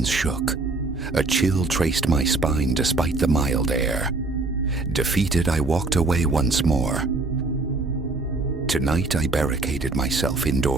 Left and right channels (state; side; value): quieter; left; 3.4 dB